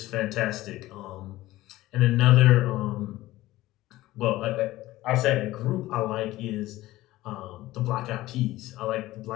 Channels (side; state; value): right; quieter; 16.9 dB